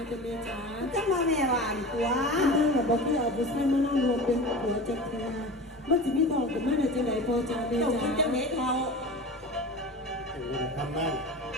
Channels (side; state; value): both; normal; correlation 0.33